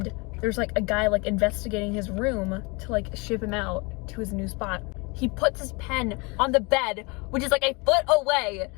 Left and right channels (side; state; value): right; quieter; 28.6 dB